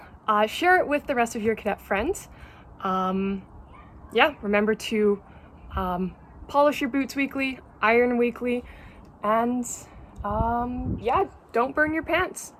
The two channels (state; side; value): identical; both; correlation 1.00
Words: Share it with the rest of your cadet friends. Yeah, remember to polish your boots weekly, iron weekly, and yeah, don't burn your pants.